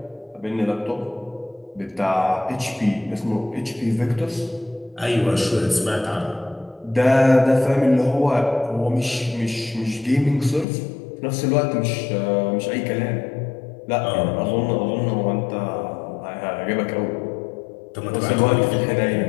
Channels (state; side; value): drops out; right; at 10.7 s